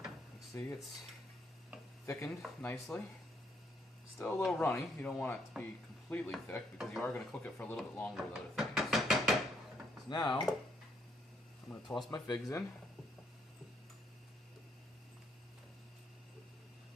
You can see it's thickened nicely. Still a little runny. You don't want it to be completely thick because you are going to cook it for a little bit longer with other things. So now, I'm going to toss my figs in.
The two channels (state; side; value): normal; both; correlation 0.72